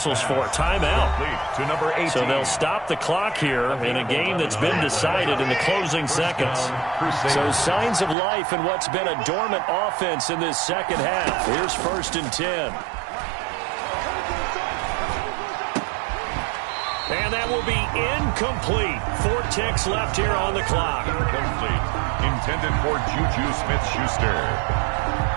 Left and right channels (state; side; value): drops out; left; at 8.2 s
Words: for? Timeout. To number 18. So they'll stop the clock here in a game that's been decided in the closing seconds. So signs of life in what's been a dormant offense in this second half. Here's 1st and 10. And that will be incomplete. 4 ticks left here on the clock. Incomplete. Intended for Juju Smith-Schuster.